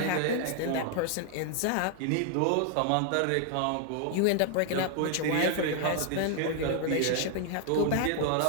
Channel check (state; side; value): different; both; correlation 0.00